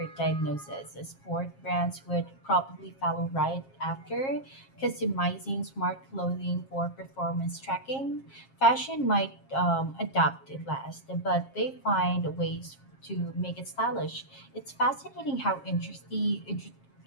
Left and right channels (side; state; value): right; late; 7.4 ms